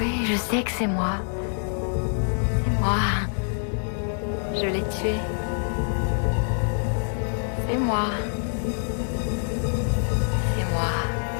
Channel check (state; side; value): silent; right; 61 dB below the other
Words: je sais que c'est moi. C'est moi. Je l'ai tué. C'est moi. C'est moi.